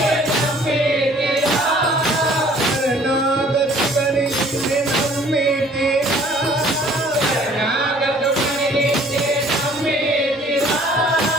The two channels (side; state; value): left; noise; hum, 26 dB below the sound